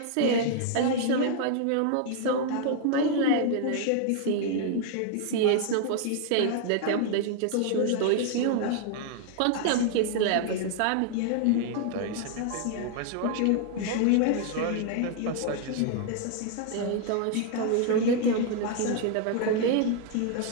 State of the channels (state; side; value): different; both; correlation 0.00